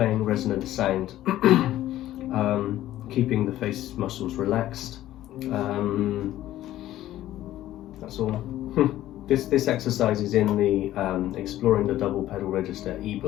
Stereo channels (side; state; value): right; quieter; 14.0 dB